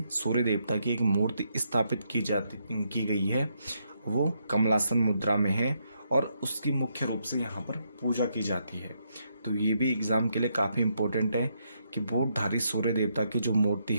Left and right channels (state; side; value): inverted; both; correlation -0.78